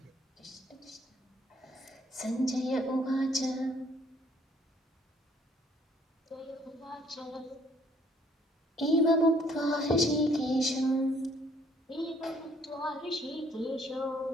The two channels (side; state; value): both; normal; correlation 0.63